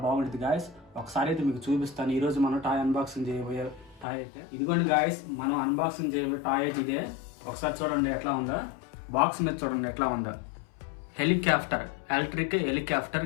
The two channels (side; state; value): right; drops out; at 4.0 s